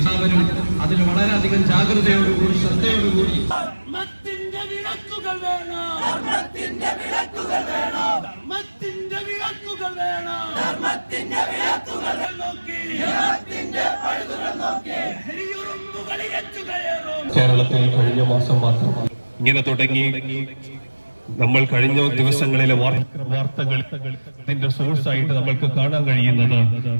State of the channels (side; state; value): both; inverted; correlation -1.00